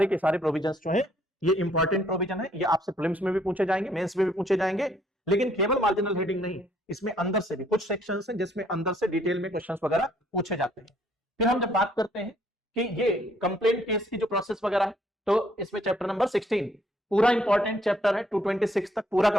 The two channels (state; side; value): normal; both; correlation 0.66